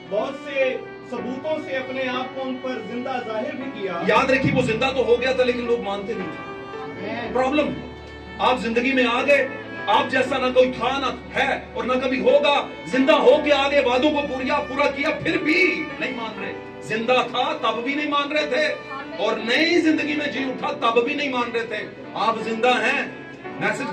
بہت سے ثبوتوں سے اپنے آپ کو ان پر زندہ ظاہر بھی کیا. یاد رکھیے وہ زندہ تو ہو گیا تھا لیکن لوگ مانتے نہیں تھے. پرابلم, آپ زندگی میں آ گئے, آپ جیسا نہ کوئی تھا نہ ہے اور نہ کبھی ہوگا. زندہ ہو کے آگے وعدوں کو پورا کیا, پھر بھی نہیں مان رہے. زندہ تھا تب بھی نہیں مان رہے تھے, اور نئی زندگی میں جی اٹھا تب بھی نہیں مان رہے تھے. آپ زندہ ہیں, میسج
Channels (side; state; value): both; identical; correlation 1.00